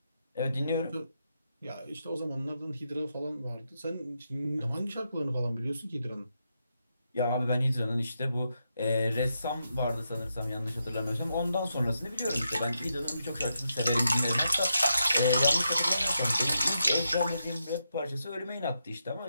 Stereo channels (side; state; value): both; inverted; correlation -0.84